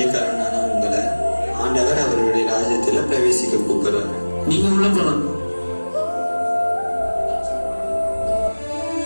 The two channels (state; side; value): inverted; both; correlation -1.00